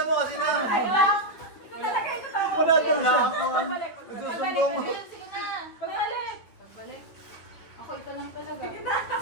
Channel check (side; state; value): right; late; 9.8 ms